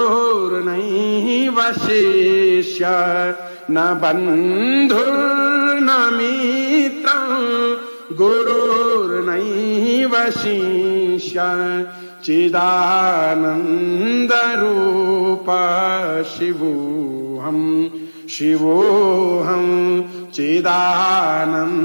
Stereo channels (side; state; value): both; inverted; correlation -1.00